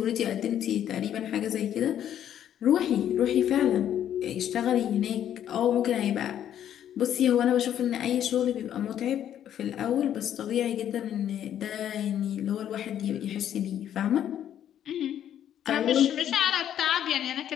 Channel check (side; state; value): right; quieter; 10.4 dB